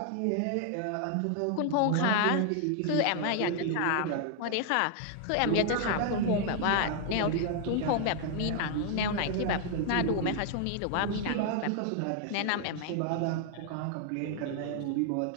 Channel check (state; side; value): different; both; correlation 0.00